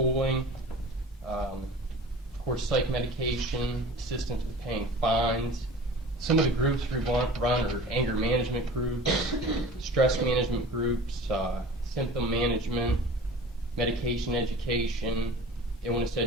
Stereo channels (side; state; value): both; normal; correlation 0.40